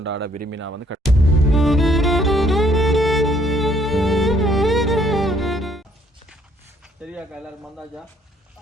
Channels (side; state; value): both; normal; correlation 0.65